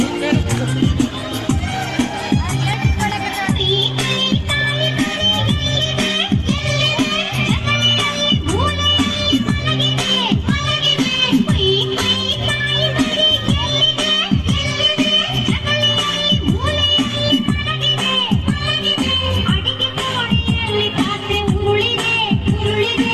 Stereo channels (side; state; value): both; identical; correlation 1.00